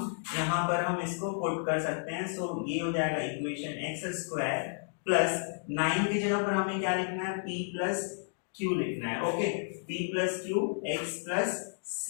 यहाँ पर हम इसको पुट कर सकते हैं। सो ये हो जाएगा इक्वेशन x स्क्वायर प्लस 9 की जगह पर हमें क्या लिखना है, p प्लस q लिखना है। Okay, p plus q x plus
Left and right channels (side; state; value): right; silent; digital silence